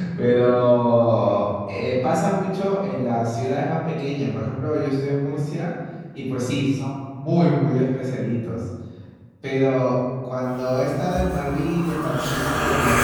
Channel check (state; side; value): identical; both; correlation 1.00